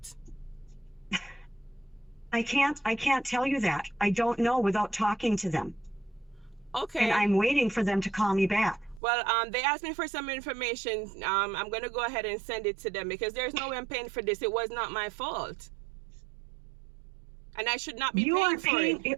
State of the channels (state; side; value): drops out; left; at 9.0 s